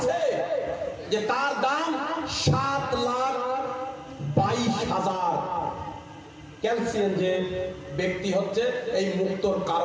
যে তার দাম 7,22,000। ক্যালসিয়াম যে ব্যক্তি হচ্ছে এই মুক্তর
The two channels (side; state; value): both; identical; correlation 1.00